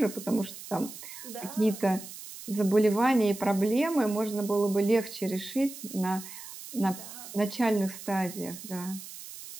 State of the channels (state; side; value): noise; right; hiss, 13 dB below the sound